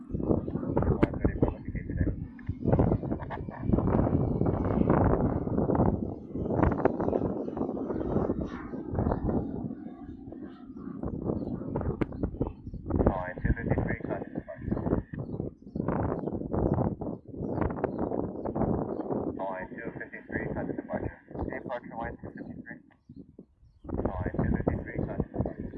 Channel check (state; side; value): identical; both; correlation 1.00